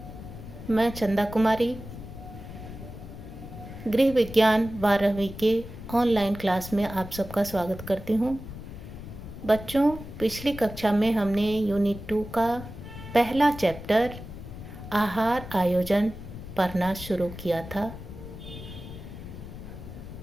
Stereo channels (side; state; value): left; noise; rumble, 12 dB below the sound